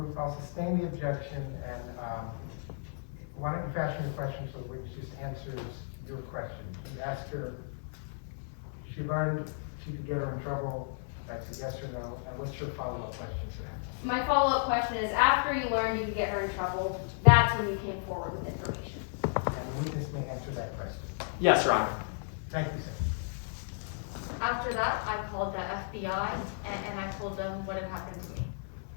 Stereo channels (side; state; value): right; silent; 55 dB below the other